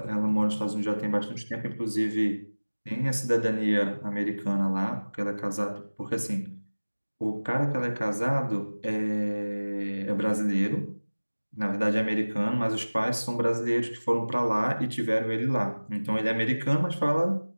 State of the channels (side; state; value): both; inverted; correlation -1.00